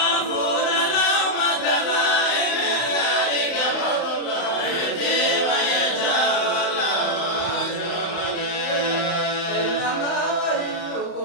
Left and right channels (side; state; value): right; late; 35 ms